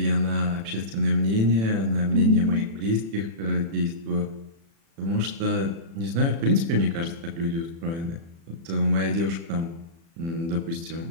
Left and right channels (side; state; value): left; late; 36 ms